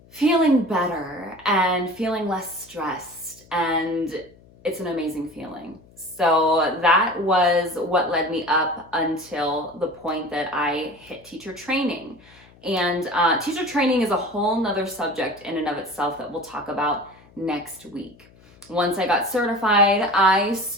feeling better and feeling less stressed. And it's an amazing feeling. So that was what led me up until the point that I hit teacher training. And teacher training is a whole nother subject in and of itself that we'll talk about next week. Once I got certified, I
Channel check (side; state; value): left; noise; hum, 26 dB below the sound